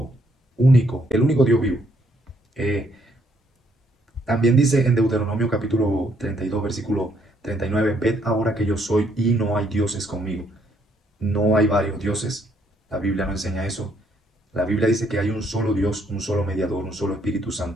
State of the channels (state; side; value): normal; both; correlation 0.70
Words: único, el único Dios vivo. Eh, También dice en Deuteronomio capítulo 32, versículo 39, ved ahora que yo soy y no hay dioses conmigo. No hay varios dioses. La Biblia no enseña eso. La Biblia dice que hay un solo Dios, un solo mediador, un solo Espíritu